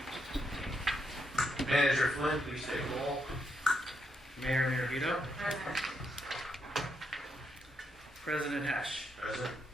Manager Flynn, please take roll. Mayor Miravito. President Hesh. Present.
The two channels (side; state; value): both; normal; correlation 0.80